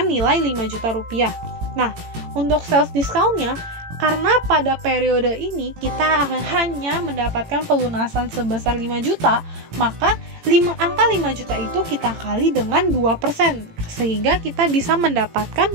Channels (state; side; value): late; left; 18 ms